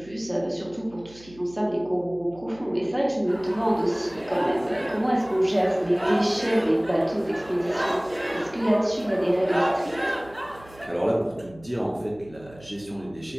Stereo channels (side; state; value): right; noise; hum, 22 dB below the sound